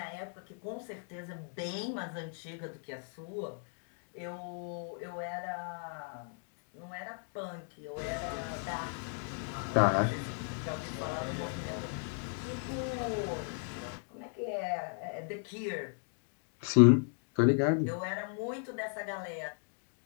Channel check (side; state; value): right; silent; 54 dB below the other